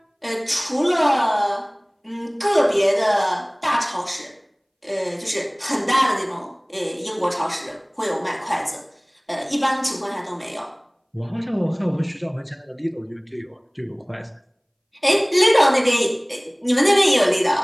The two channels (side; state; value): both; identical; correlation 1.00